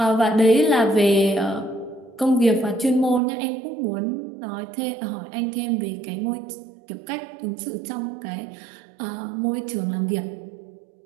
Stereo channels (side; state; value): left; drops out; at 3.2 s